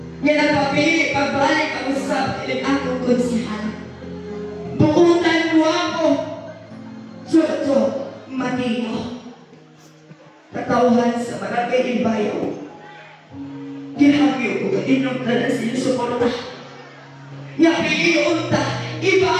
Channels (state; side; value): identical; both; correlation 1.00